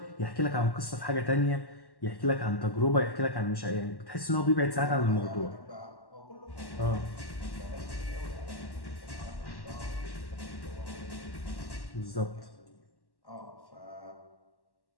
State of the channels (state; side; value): late; right; 1.1 ms